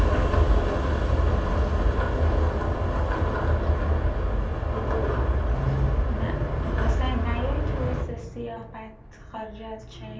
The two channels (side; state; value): both; identical; correlation 1.00